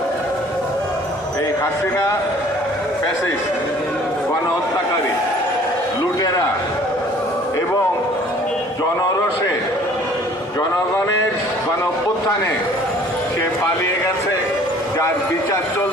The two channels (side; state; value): both; normal; correlation 0.53